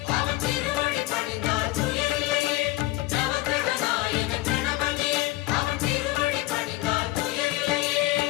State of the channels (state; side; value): quieter; right; 18.5 dB